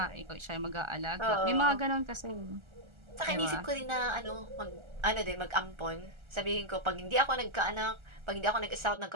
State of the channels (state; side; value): late; left; 1.4 ms